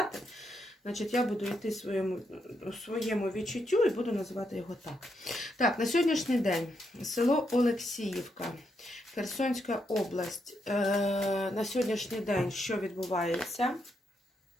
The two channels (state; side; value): normal; both; correlation 0.80